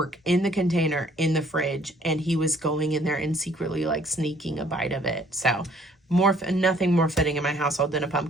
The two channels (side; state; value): both; normal; correlation 0.60